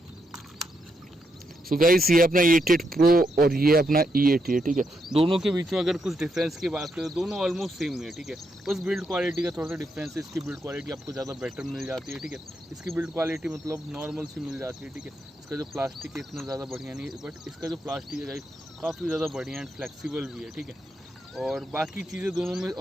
सो गाइस ये अपना E88 प्रो और ये अपना E88, ठीक है। दोनों के बीच में अगर कुछ डिफरेंस की बात करें तो दोनों ऑलमोस्ट सेम ही है, ठीक है। बस बिल्ड क्वालिटी का थोड़ा सा डिफरेंस है, इसकी बिल्ड क्वालिटी आपको ज़्यादा बेटर मिल जाती है, ठीक है। इसकी बिल्ड क्वालिटी मतलब नॉर्मल सी मिल जाती है, ठीक है। इसका जो प्लास्टिक है इतना ज़्यादा बढ़िया नहीं है, बट इसका जो प्लास्टिक है गाइस काफ़ी ज़्यादा बढ़िया एंड फ्लेक्सिबल भी है, ठीक है। और बाकी चीज़ें दोनों में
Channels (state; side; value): normal; both; correlation 0.80